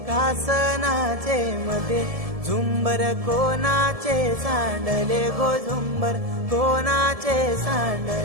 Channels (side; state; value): left; late; 1.7 ms